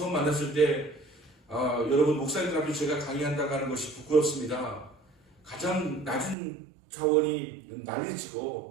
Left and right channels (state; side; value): drops out; left; at 6.4 s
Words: 만났을 때 여러분 목사님들 앞에 제가 강의한다고 하는 것이 부끄럽습니다. 가장 낮은 차원이